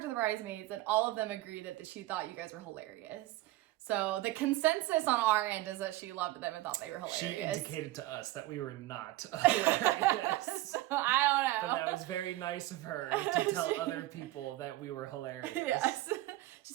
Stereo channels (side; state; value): left; quieter; 17.1 dB